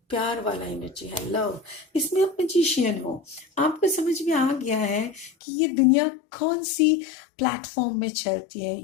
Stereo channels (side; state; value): right; drops out; at 5.3 s